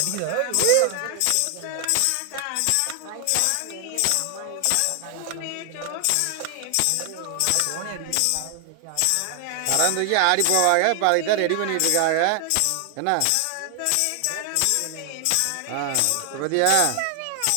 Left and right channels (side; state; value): both; different; correlation 0.00